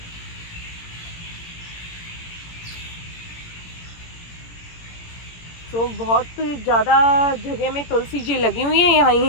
तो बहुत ज़्यादा जगह में तुलसी जी लगी हुई है, यहाँ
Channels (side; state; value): right; late; 17 ms